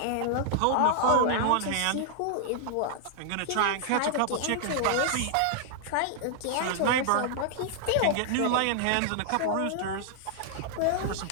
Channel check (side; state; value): both; different; correlation -0.01